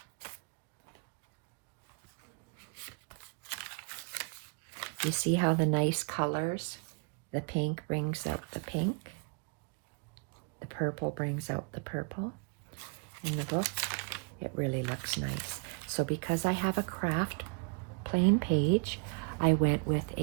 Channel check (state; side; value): quieter; left; 35.5 dB